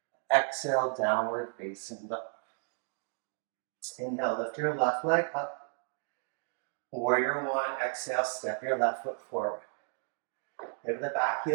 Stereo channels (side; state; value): left; silent; 56 dB below the other